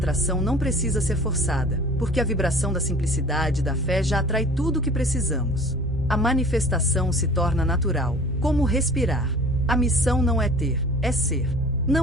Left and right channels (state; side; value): normal; both; correlation 0.44